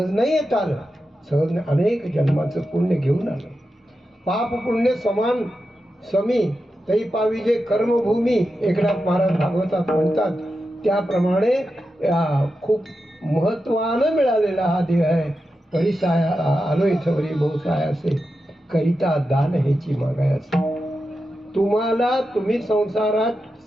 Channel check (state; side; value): normal; both; correlation 0.90